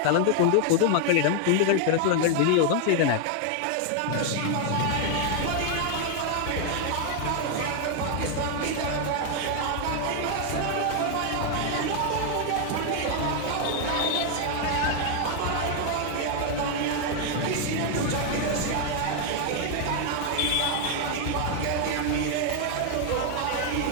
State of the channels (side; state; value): both; different; correlation 0.00